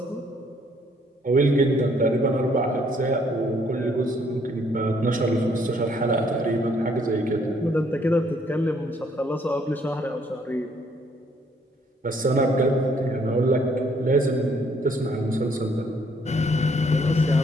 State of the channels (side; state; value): both; normal; correlation 0.66